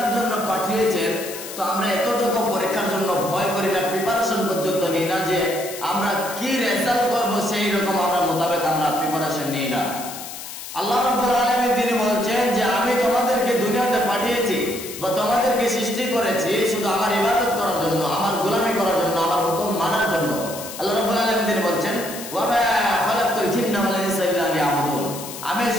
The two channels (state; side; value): noise; left; hiss, 11 dB below the sound